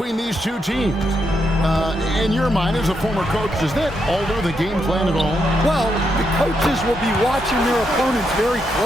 these two teams. In your mind, as a former coach, does that alter the game plan at all? Well, the coaches will be watching their opponents very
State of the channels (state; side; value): normal; both; correlation 0.81